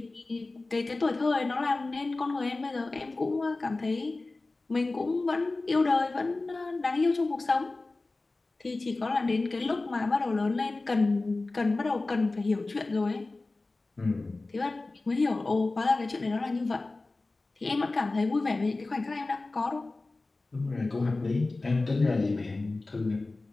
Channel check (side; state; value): right; quieter; 3.3 dB